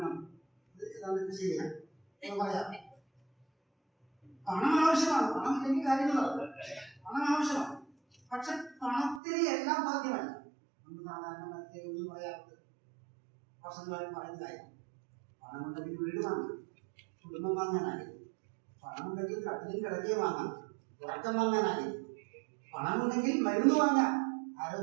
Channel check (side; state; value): left; drops out; at 9.2 s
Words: ഇത് ഏതാണ്ട് ശരിയാണ് എന്ന് പറയാം. പണം ആവശ്യമാണ്, പണം ഇല്ലെങ്കിൽ കാര്യങ്ങളാണ്. പണം ആവശ്യമാണ്, പക്ഷെ പണത്തിന് എല്ലാം സാധ്യമല്ല. നമ്മൾ സാധാരണ മറ്റൊന്നും പറയാറുണ്ട്, വർഷങ്ങളായി പറയുന്ന കാര്യം. പണമുണ്ടെങ്കിൽ വീട് വാങ്ങാം, കുടുംബം വാങ്ങാനായി. പണമുണ്ടെങ്കിൽ കട്ടിലും കിടക്കയും വാങ്ങാം, ഉറക്കം വാങ്ങാനായി. പണമുണ്ടെങ്കിൽ മരുന്ന് വാങ്ങാം,